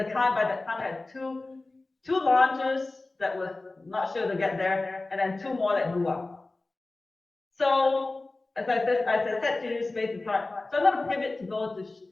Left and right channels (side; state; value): right; quieter; 3.2 dB